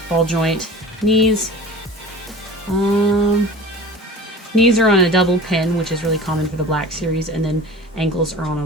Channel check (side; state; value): both; normal; correlation 0.39